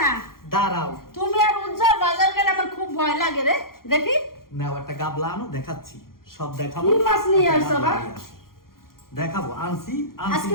দাঁড়াও। তুমি আর উজ্জ্বল বাজার গেলে আমার খুব ভয় লাগে রে। দেখি। নাও একটা গাবলা আনো, দেখাচ্ছি। সব দেখাবো। কি মাছ নিয়ে আসছো বা? দেখাবো, আনছি। আজকে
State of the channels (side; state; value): right; late; 0.92 ms